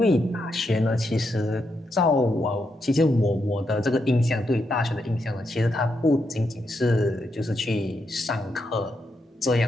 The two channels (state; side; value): normal; both; correlation 0.82